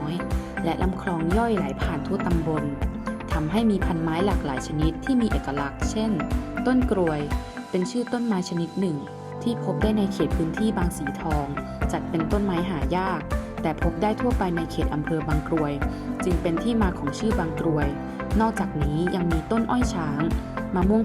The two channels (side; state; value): both; identical; correlation 1.00